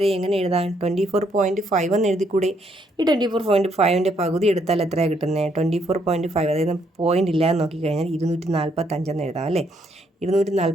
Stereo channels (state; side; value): normal; both; correlation 0.72